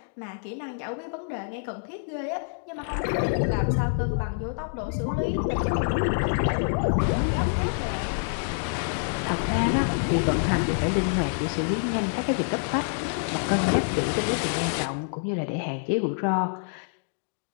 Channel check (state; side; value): silent; right; digital silence